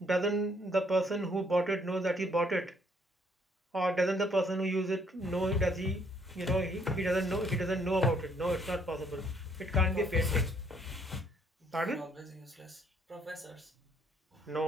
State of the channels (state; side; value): normal; both; correlation 0.66